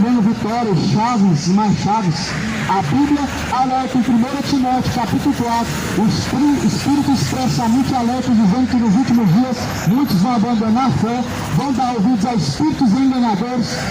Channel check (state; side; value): identical; both; correlation 1.00